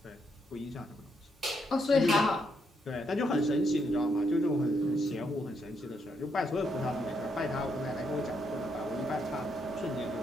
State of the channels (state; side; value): normal; both; correlation 0.77